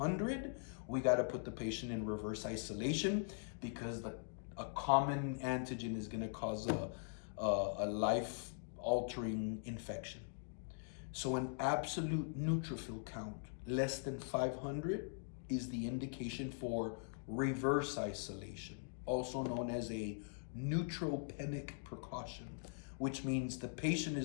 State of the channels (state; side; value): silent; right; digital silence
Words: we got to put the patient in reverse isolation, because a common antigen is going to cause a life-altering infection. So an absolute neutrophil count less than 500 is the indication for reverse isolation, also known as a neutropenic precaution, which means the patient